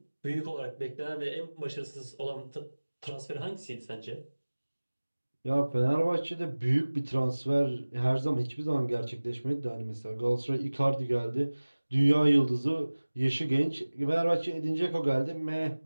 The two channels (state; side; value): inverted; both; correlation -1.00